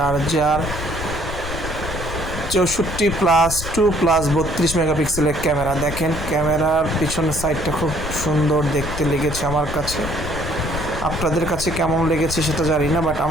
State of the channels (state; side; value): noise; left; rumble, 8 dB below the sound